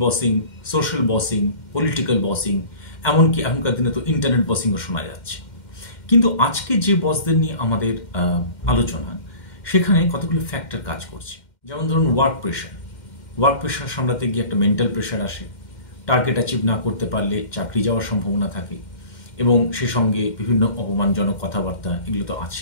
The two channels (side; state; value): right; late; 2.1 ms